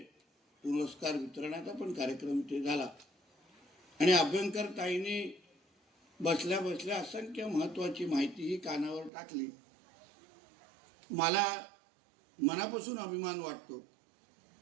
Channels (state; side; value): drops out; left; at 9.1 s